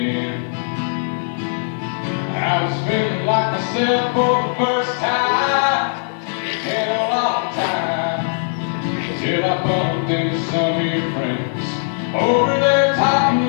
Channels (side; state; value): right; silent; digital silence